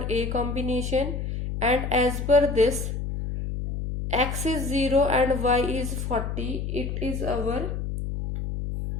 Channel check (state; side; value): noise; left; hum, 4 dB below the sound